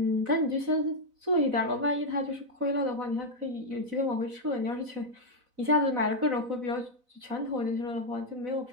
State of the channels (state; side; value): late; left; 4.0 ms